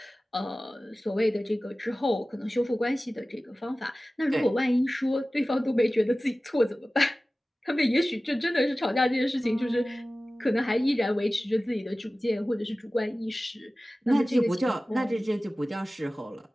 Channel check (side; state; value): both; normal; correlation 0.96